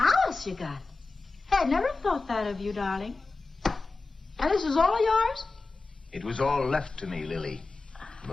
you got. I'd never thought that of you, darling. And this is all yours? It was all left to me, Lily.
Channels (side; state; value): right; quieter; 3.7 dB